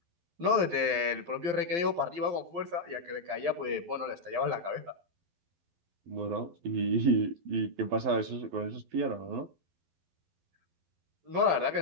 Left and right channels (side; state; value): left; late; 12 ms